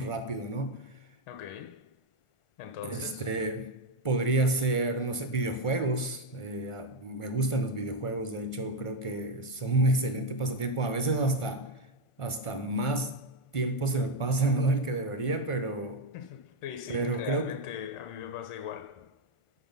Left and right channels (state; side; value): late; right; 1.4 ms